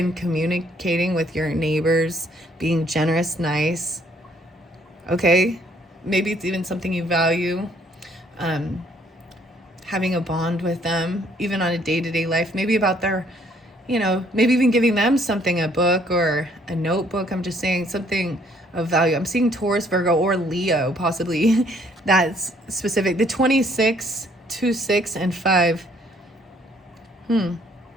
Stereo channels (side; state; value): both; normal; correlation 0.64